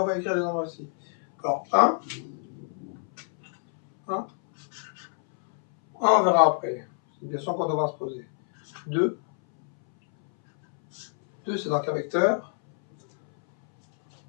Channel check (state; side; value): silent; right; 61 dB below the other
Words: va écrire les nombres aussi. Alors, 1, on verra après. C'est une question qu'on devra se poser. 2, c'est donc un vecteur